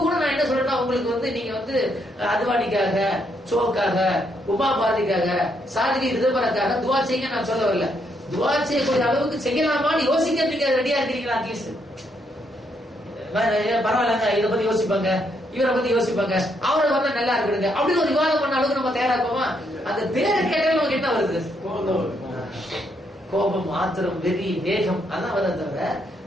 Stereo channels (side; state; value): both; normal; correlation 0.75